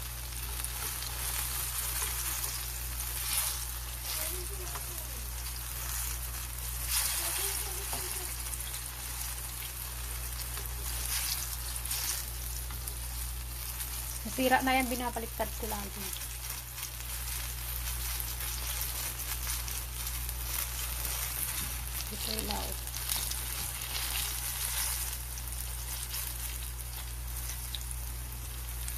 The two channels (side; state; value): both; identical; correlation 1.00